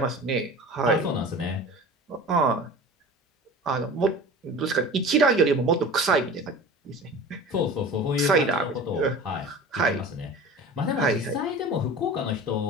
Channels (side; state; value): both; normal; correlation 0.38